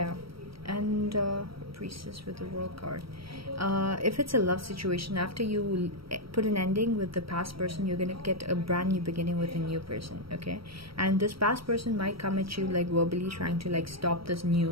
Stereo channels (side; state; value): left; late; 0.75 ms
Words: and priestess with the world card. If it's a love situation, after you put an ending with the past person, you're gonna get a brand new beginning with a new person, okay? And this past person might come at you like verbally trying to like stop this